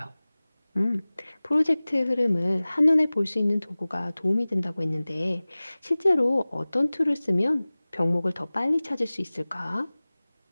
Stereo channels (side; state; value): both; inverted; correlation -0.99